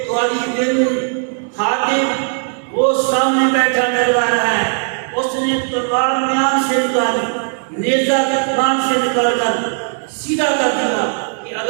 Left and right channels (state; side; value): silent; left; 61 dB below the other